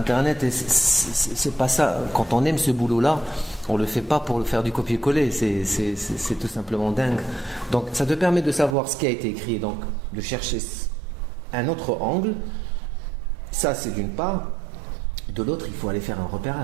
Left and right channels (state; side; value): drops out; left; at 8.8 s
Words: et c'est pas ça. Quand on aime ce boulot-là, on le fait pas pour le faire du copier-coller. C'est tout simplement dingue. Donc, ça te permet de savoir ce qui a été écrit, donc de chercher un autre angle. Ça, c'est d'une part. De l'autre, il faut aller faire un